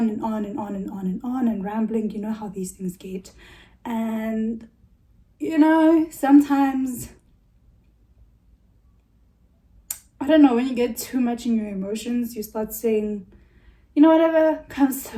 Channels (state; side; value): identical; both; correlation 1.00